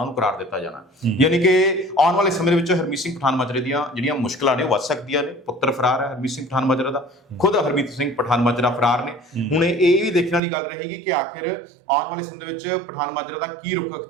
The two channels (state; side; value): drops out; left; at 10.4 s